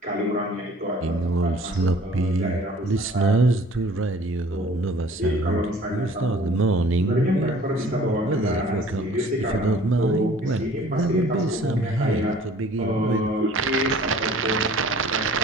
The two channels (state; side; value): normal; both; correlation 0.51